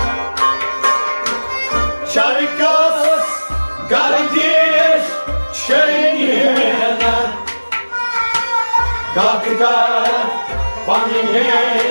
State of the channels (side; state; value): both; inverted; correlation -1.00